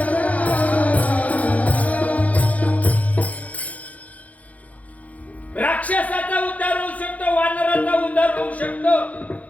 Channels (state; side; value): late; right; 0.070 ms